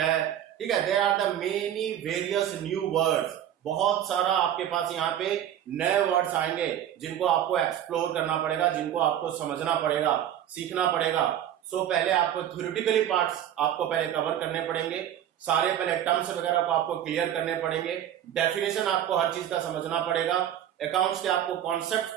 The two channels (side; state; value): left; quieter; 10.8 dB